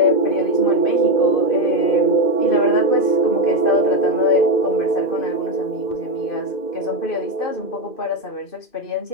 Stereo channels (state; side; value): late; right; 2.4 ms